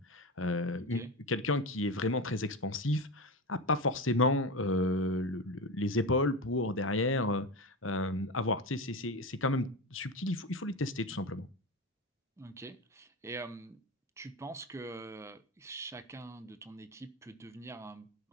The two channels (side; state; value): both; normal; correlation 0.21